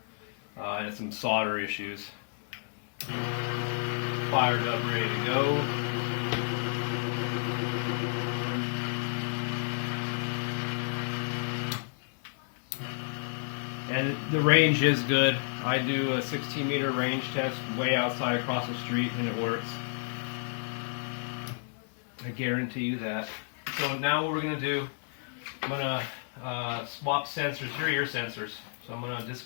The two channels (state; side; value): silent; right; 57 dB below the other